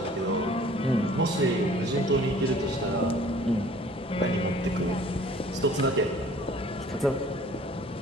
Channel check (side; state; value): both; normal; correlation 0.52